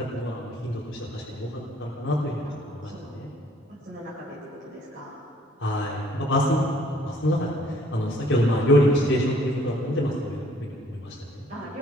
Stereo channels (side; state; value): both; normal; correlation 0.61